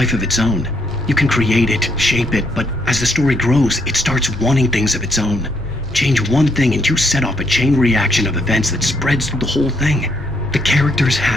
of its own. You can create it, shape it, but as the story grows, it starts wanting things of its own. Change one thing and you set off a chain reaction of events that spreads through the whole thing. The characters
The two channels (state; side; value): normal; both; correlation 0.73